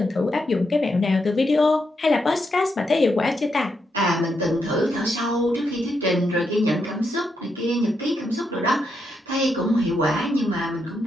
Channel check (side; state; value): both; normal; correlation 0.81